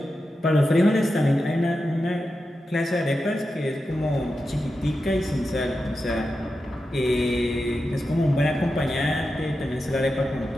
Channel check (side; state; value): both; normal; correlation 0.90